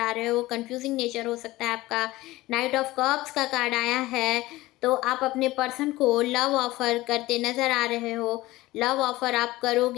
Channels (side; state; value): right; quieter; 18.4 dB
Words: रहे हो, कंफ्यूजिंग नेचर हो सकता है आपका। नाइट ऑफ कप्स का कार्ड आया है, तो आप अपने पर्सन को लव ऑफ़र करते नज़र आ रहे हो। लव ऑफ़र आप